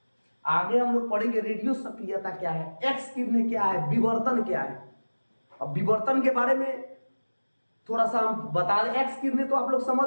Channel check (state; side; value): inverted; both; correlation -1.00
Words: आगे हम लोग पढ़ेंगे रेडियो सक्रियता क्या है, एक्स किरणें क्या है, विवर्तन क्या है। अब विवर्तन के बारे में थोड़ा सा हम बता दें। एक्स किरणें तो आप लोग